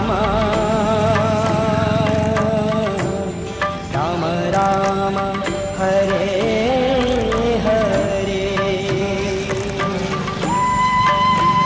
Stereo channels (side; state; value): both; identical; correlation 1.00